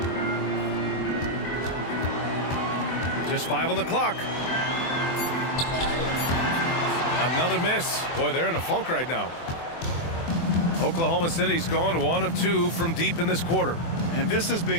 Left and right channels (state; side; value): late; right; 24 ms